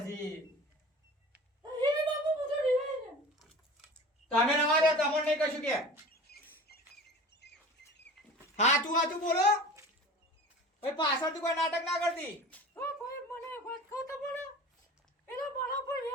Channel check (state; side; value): normal; both; correlation 0.38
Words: એ બાપુ બધું રીવાય ને તમે નવા દે તમને નહીં કશું કે. હાચું બોલો. ભાઈ પાછળથી કોઈ નાટક ના કરતી. ઓ ભાઈ મને એક વાત કહો તો બોલો એનો મારા પર